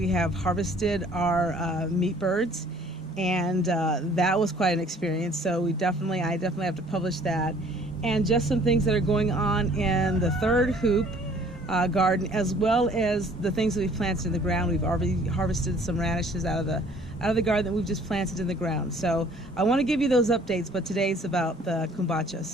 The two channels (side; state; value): both; normal; correlation 0.56